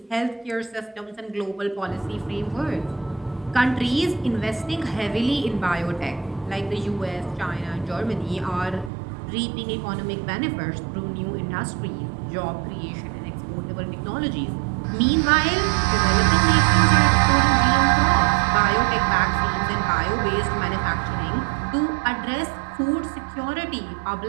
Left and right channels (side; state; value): left; drops out; at 8.9 s